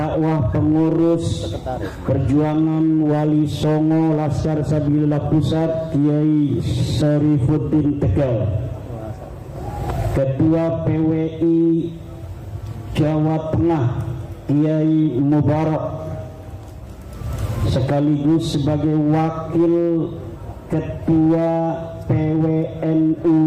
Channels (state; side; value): identical; both; correlation 1.00